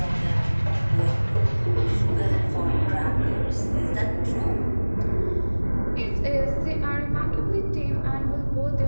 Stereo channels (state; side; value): inverted; both; correlation -1.00